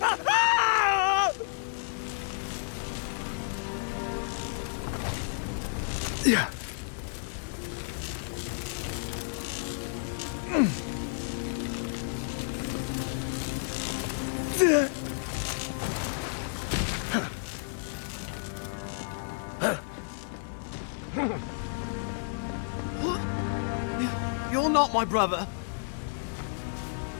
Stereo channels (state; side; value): silent; right; digital silence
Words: Yeah. You're not my brother.